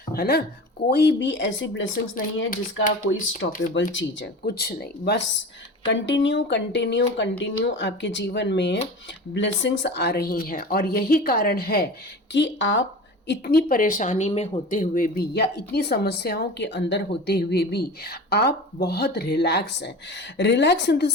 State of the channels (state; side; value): normal; both; correlation 0.34